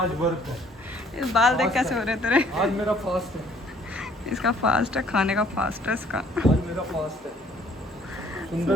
वर्क है। बाल देख कैसे हो रहे तेरे? आज मेरा फास्ट है। इसका फास्ट है, खाने का फास्ट है इसका। आज मेरा फास्ट है। सुंदर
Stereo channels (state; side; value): normal; both; correlation 0.59